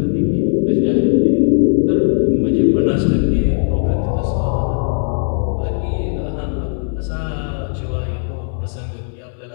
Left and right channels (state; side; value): silent; right; digital silence